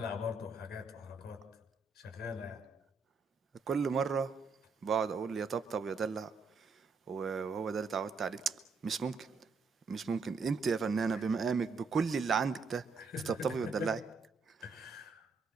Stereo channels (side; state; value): left; quieter; 4.5 dB